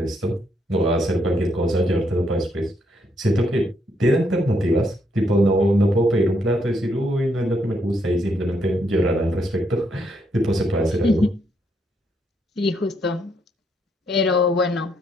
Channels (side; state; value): both; normal; correlation 0.75